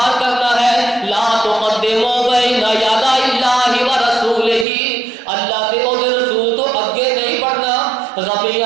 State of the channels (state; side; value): drops out; left; at 4.7 s